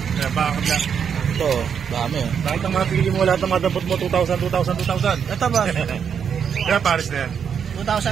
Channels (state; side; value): quieter; left; 7.4 dB